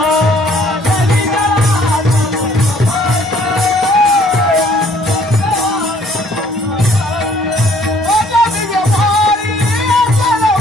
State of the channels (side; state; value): both; normal; correlation 0.60